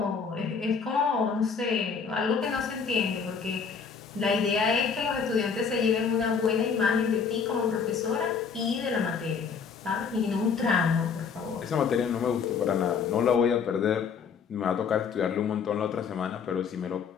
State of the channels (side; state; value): right; quieter; 6.1 dB